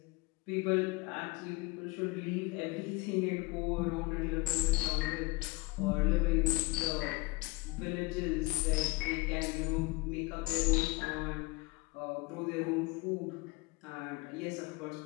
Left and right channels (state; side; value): quieter; right; 23.7 dB